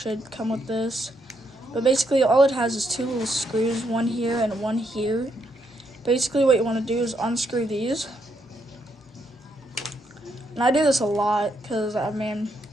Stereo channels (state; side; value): normal; both; correlation 0.77